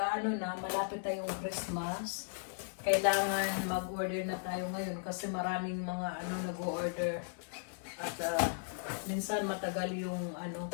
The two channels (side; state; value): right; silent; digital silence